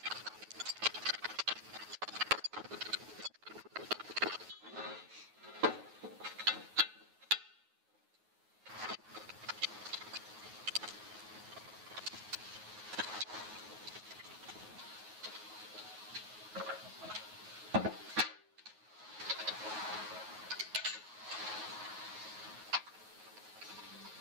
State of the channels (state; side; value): late; left; 9.4 ms